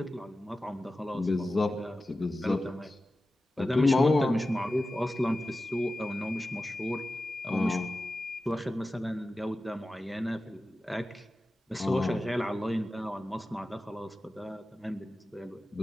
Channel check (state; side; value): normal; both; correlation 0.94